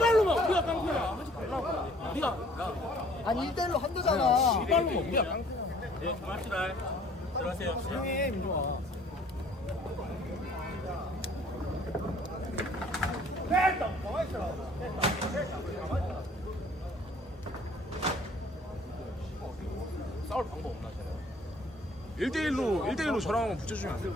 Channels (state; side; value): normal; both; correlation 0.56